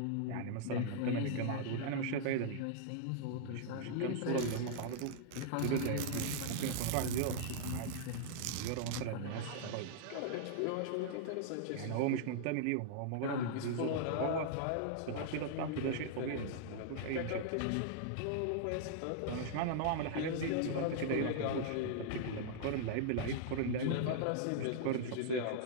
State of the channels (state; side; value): different; both; correlation -0.01